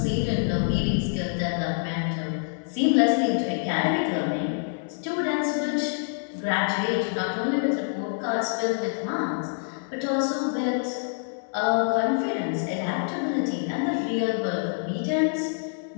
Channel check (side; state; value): right; silent; 61 dB below the other